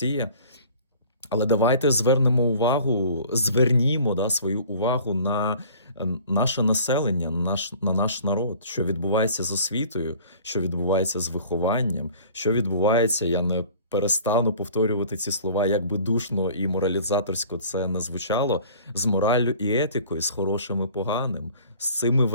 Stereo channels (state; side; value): inverted; both; correlation -0.48